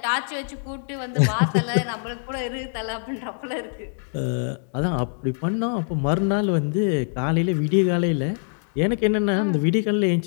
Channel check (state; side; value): silent; right; digital silence